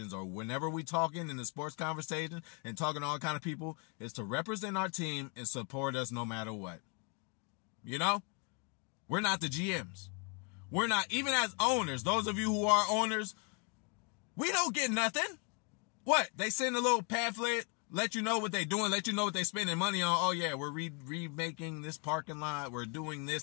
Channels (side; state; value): right; quieter; 32.3 dB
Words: or whenever we talking in the sports conversation and talking to all kind of people is to represent our team and support us no matter what. You know, we're not the GMs. We're not, even as owners, those of you who are owners, we don't get nothing. What? They send a little pamphlet, let you know what they're doing, let you know what they're spending money on. Oh yeah, we're remaking this parking lot, we're doing